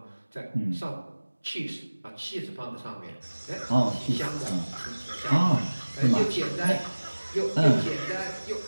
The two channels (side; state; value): both; inverted; correlation -1.00